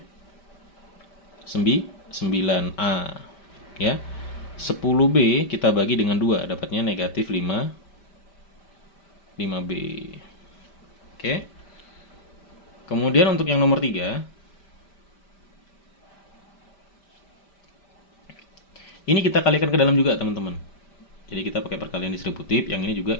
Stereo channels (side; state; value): right; late; 5.1 ms